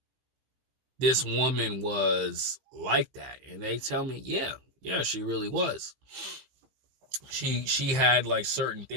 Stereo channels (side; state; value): left; late; 15 ms